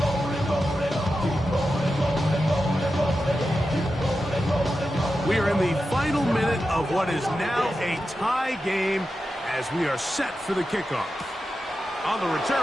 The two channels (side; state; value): both; normal; correlation 0.91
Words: We are in the final minute of what is now a tie game as we are set for the kickoff. On the